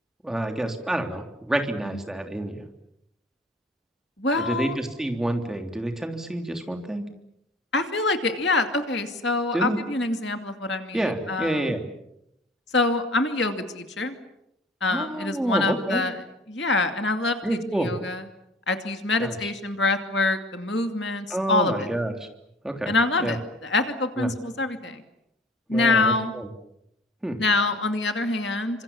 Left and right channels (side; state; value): both; normal; correlation 0.47